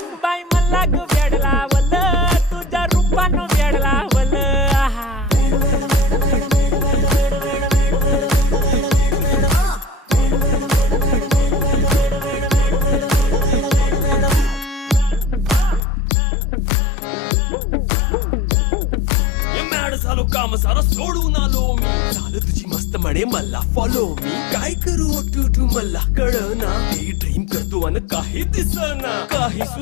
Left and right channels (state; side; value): drops out; right; at 15.8 s